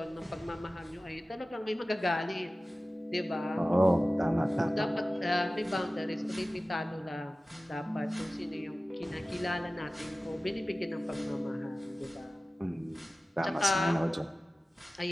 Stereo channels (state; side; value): normal; both; correlation 0.96